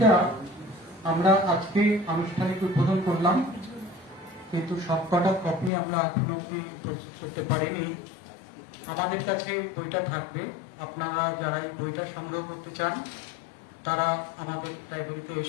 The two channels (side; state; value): right; drops out; at 5.7 s